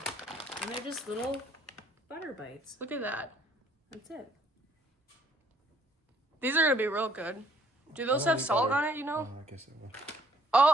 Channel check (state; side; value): normal; both; correlation 0.63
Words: And they're just little butter bites. Look at that. That's it. These are gonna be real good. Do those have salt on it, you know? I guess I will.